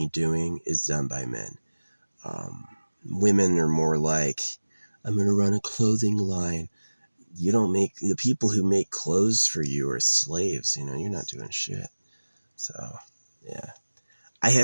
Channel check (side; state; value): both; inverted; correlation -1.00